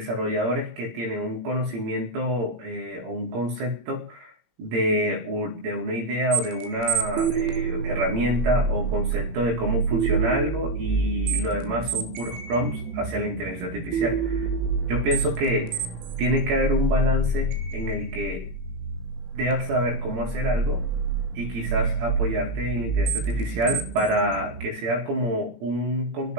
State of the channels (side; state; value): left; late; 17 ms